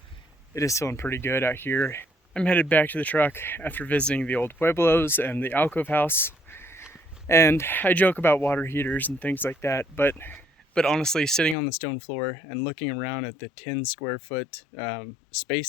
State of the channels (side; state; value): right; drops out; at 11.6 s